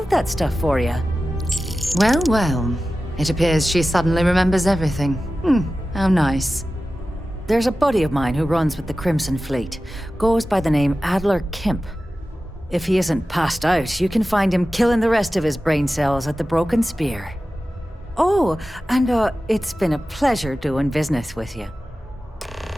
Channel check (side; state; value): both; normal; correlation 0.95